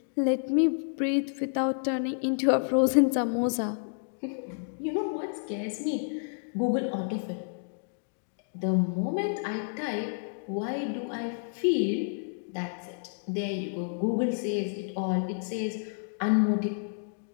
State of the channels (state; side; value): silent; right; digital silence